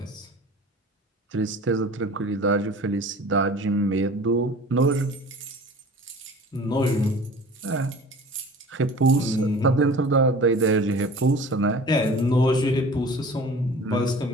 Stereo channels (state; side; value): normal; both; correlation 0.42